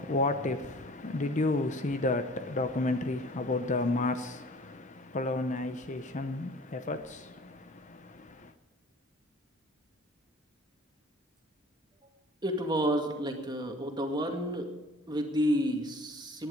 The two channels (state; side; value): normal; both; correlation 0.47